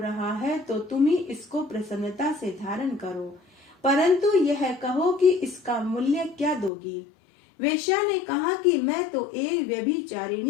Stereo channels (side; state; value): right; drops out; at 6.7 s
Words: है तो तुम ही इसको प्रसन्नता से धारण करो, परंतु यह कहो कि इसका मूल्य क्या दोगी। वेश्या ने कहा कि मैं तो एक